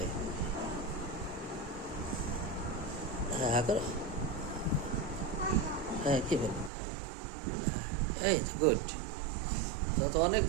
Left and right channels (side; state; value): left; drops out; at 6.7 s